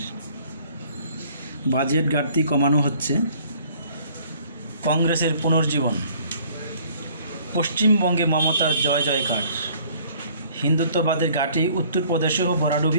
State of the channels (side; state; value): both; inverted; correlation -0.57